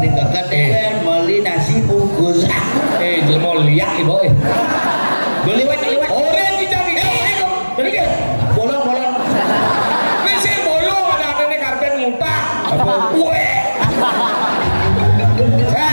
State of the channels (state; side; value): inverted; both; correlation -1.00